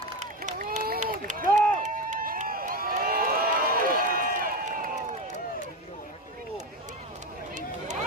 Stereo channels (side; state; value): both; normal; correlation 0.17